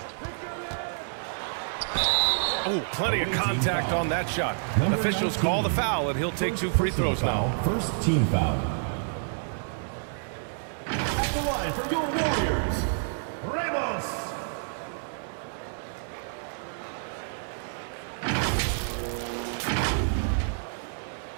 Ooh, plenty of contact on that shot. Officials call the foul, and he'll take 2 free throws now. First team foul. At the line for your Warriors, Ramos.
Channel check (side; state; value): left; silent; digital silence